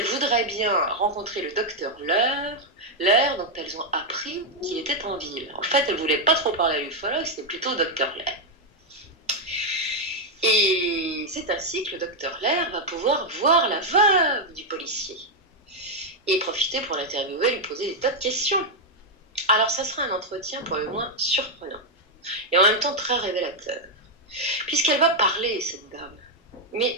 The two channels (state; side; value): normal; both; correlation 0.00